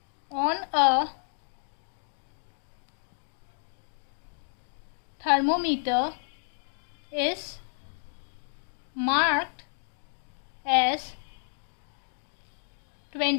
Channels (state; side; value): silent; right; digital silence